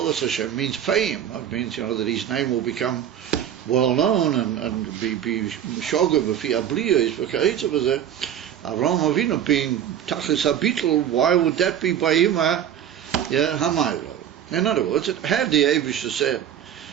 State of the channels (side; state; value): left; quieter; 9.9 dB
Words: Hashem means fame. It means, that his name will become well known and be shoga b'fi abliya is v'ka'itza b'zeh. Avraham Avinu being tachlis habitl, why would that be by him? Hamaylo. In other words, had the Eibusha said